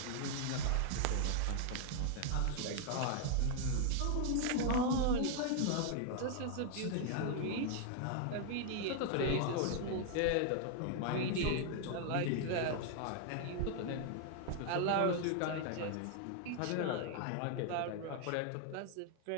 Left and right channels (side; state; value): both; different; correlation 0.00